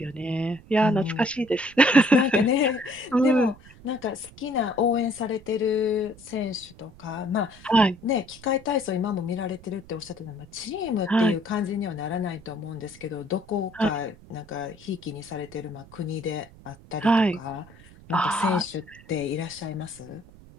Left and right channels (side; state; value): right; noise; rumble, 22 dB below the sound